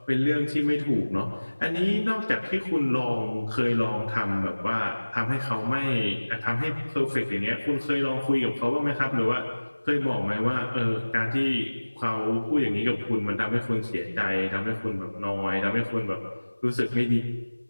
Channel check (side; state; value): both; inverted; correlation -1.00